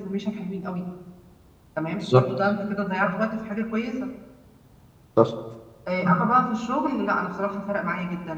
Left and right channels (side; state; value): both; identical; correlation 1.00